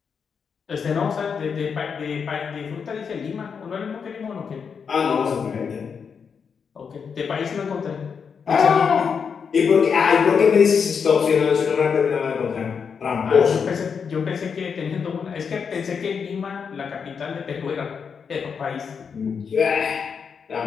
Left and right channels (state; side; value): quieter; right; 6.3 dB